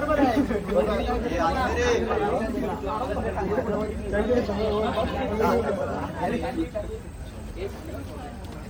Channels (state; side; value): identical; both; correlation 1.00